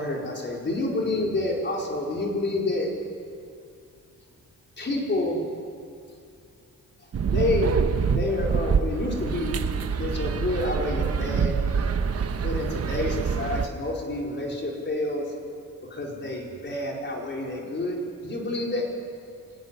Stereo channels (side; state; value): both; normal; correlation 0.47